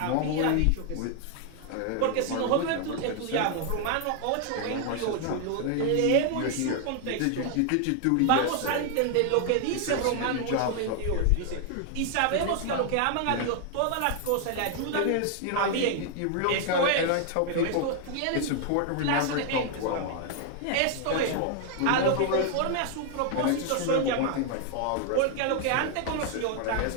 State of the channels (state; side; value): different; both; correlation 0.00